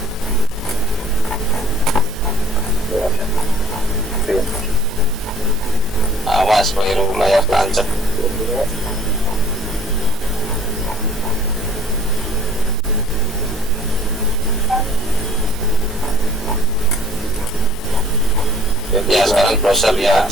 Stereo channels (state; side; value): normal; both; correlation 0.53